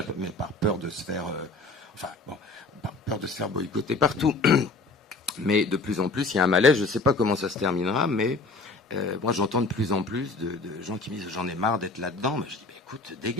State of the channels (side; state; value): right; quieter; 3.4 dB